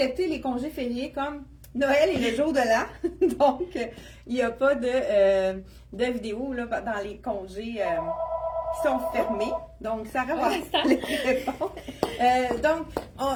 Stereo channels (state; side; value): identical; both; correlation 1.00